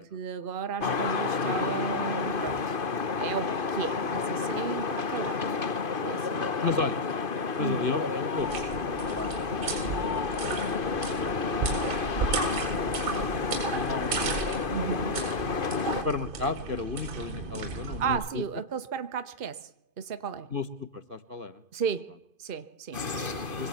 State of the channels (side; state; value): left; late; 2.5 ms